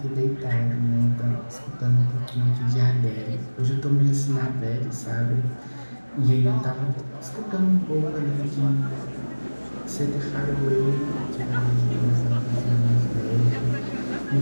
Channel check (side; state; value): both; inverted; correlation -1.00